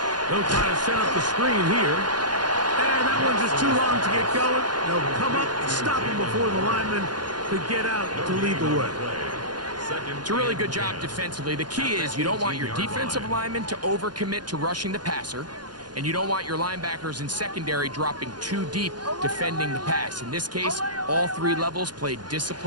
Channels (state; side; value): late; left; 0.70 ms